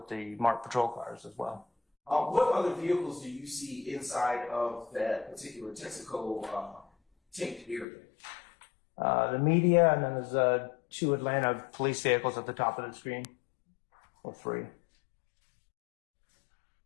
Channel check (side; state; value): right; drops out; at 7.9 s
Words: the marked patrol cars as well. What other vehicles do you see inside of that particular Texaco tent area? The media, and then there's 2 Atlanta police vehicles at the top of the screen, or 3.